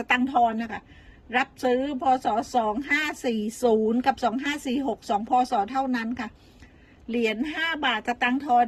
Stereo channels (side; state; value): both; identical; correlation 1.00